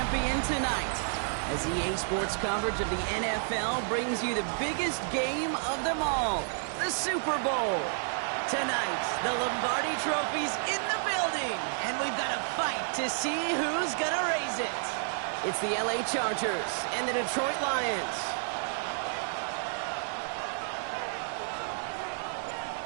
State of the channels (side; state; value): left; silent; digital silence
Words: tonight. As EA Sports coverage of the NFL brings you the biggest game of them all, the Super Bowl. Tonight, the Lombardi Trophy's in the building, and we've got a fight to see who's gonna raise it. It's the LA Chargers and the Detroit Lions.